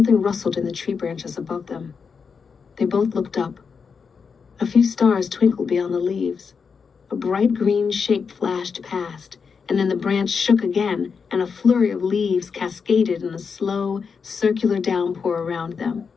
rustled in the tree branches above them. They both looked up. A few stars twinkled beyond the leaves. A bright green shape flashed past, and then the branch shook again, and a flurry of leaves cascaded in a slow, circular downpour around them.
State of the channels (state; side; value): quieter; right; 5.7 dB